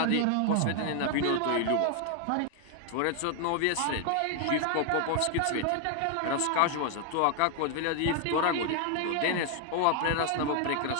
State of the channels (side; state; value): both; different; correlation 0.00